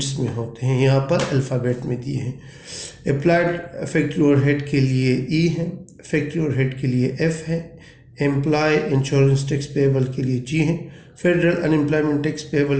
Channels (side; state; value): both; identical; correlation 1.00